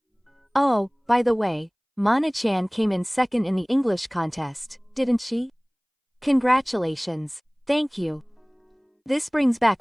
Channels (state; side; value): identical; both; correlation 1.00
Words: Oh, by the way, Mana-chan came in second in the English contest, didn't she? Congratulations. Thank you. This brings back